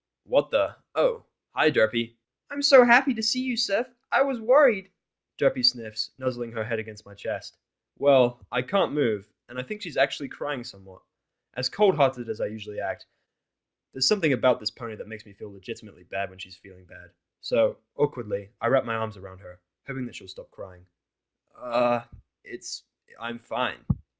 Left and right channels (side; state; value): both; identical; correlation 1.00